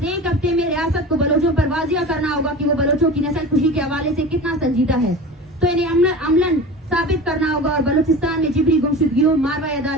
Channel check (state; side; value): normal; both; correlation 0.33